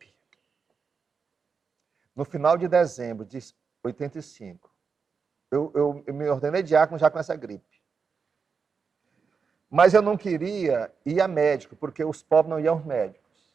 no final de dezembro de 85. Eu me ordenei diácono já com essa gripe. Mas eu não queria ir a médico, porque os pobres não iam aos médicos.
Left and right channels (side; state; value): left; quieter; 5.5 dB